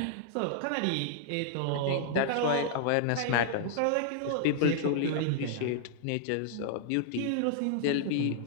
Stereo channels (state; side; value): different; both; correlation -0.01